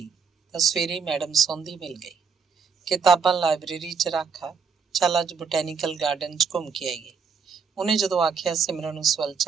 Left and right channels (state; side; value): quieter; left; 5.9 dB